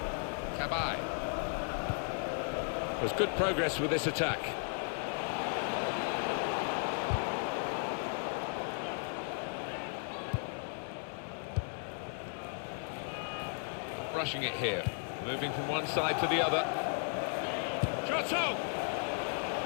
Cabaye. There's good progress with this attack. Not rushing it here. Moving from one side to the other. Giotto!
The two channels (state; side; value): silent; right; 54 dB below the other